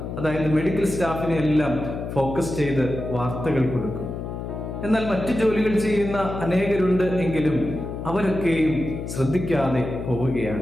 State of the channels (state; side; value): noise; left; hum, 7 dB below the sound